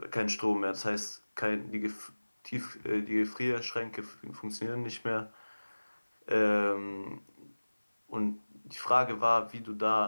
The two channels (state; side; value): inverted; both; correlation -1.00